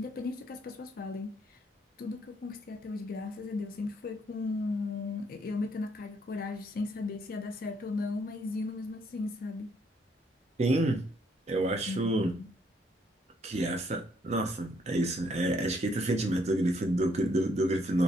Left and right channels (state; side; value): normal; both; correlation 0.70